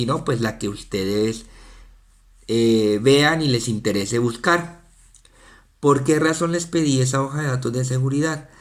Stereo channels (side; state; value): both; identical; correlation 1.00